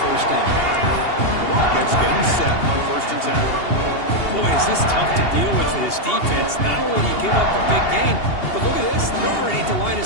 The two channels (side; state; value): right; late; 2.8 ms